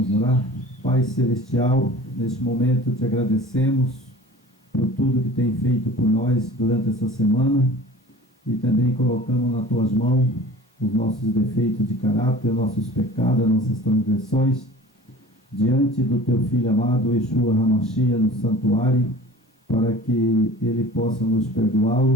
orar. Pai Celestial, neste momento te agradecemos por tudo que tem feito por nós durante essa semana e também colocamos nas tuas mãos os nossos defeitos de caráter, nossos pecados, nossas transgressões, diante do teu Filho amado, Yeshua HaMashiach, no santuário, para que ele possa nos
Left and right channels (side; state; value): both; normal; correlation 0.42